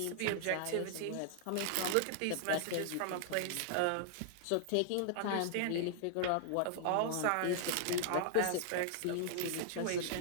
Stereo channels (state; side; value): different; both; correlation -0.01